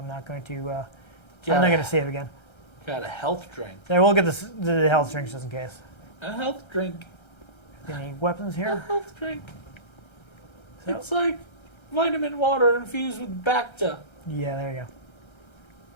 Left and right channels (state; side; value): late; right; 1.3 ms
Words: not going to. I'm not going to save again. Got a health drink. I will get the health drinks just in case. A health drink. Any weapons A here? health drink. So- It's like vitamin water infused with Bacta. Yeah, there you go.